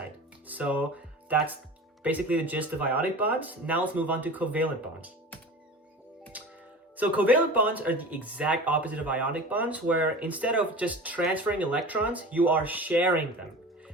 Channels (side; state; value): both; normal; correlation 0.35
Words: So that's basically the gist of ionic bonds. Now let's move on to covalent bonds. So covalent bonds are the exact opposite of ionic bonds, where instead of just transferring electrons, you are sharing them.